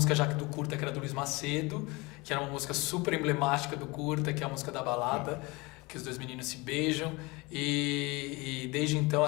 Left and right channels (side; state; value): right; quieter; 24.6 dB